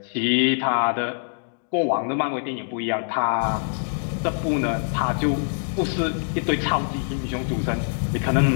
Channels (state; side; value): silent; right; digital silence